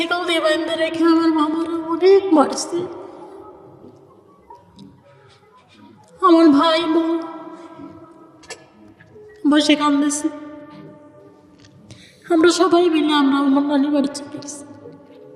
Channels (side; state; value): both; identical; correlation 1.00